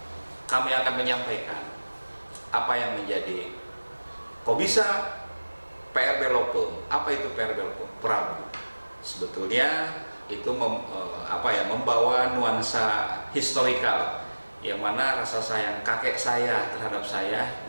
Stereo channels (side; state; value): both; inverted; correlation -1.00